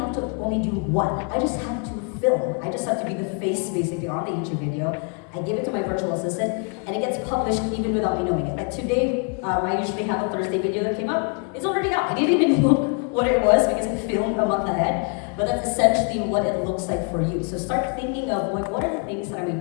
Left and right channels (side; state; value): right; quieter; 37.5 dB